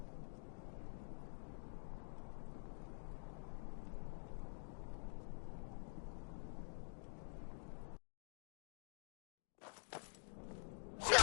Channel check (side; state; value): right; silent; digital silence